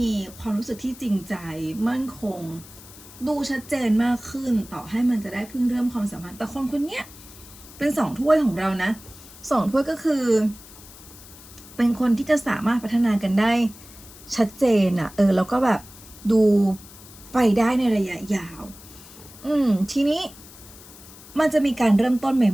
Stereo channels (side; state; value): left; noise; hiss, 19 dB below the sound